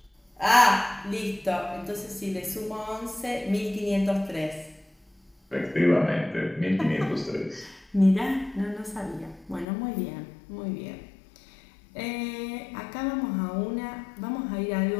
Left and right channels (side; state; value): right; drops out; at 9.7 s